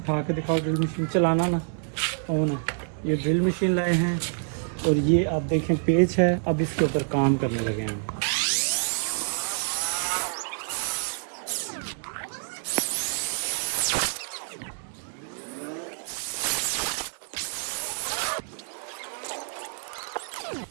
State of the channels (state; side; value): silent; left; digital silence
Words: के दिखाओ। ड्रिल मशीन चलाना ना ऑन है। ये ड्रिल मशीन लाए हैं और ये आप देखें पेच है। अब इसके ऊपर काम करने लगे हैं।